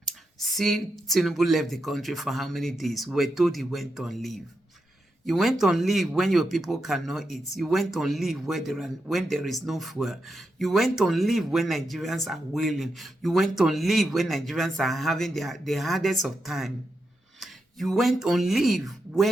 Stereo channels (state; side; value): normal; both; correlation 0.85